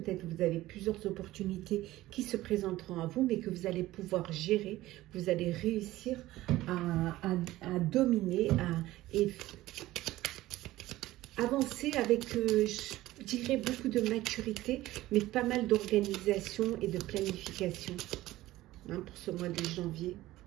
que vous avez plusieurs opportunités qui se présenteront à vous, mais que vous allez pouvoir gérer, vous allez réussir à dominer et avancer avec, je dirais, beaucoup de maturité, mais pas mal d'organisation et de planification, hein, pour ce mois de janvier.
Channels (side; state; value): left; quieter; 16.5 dB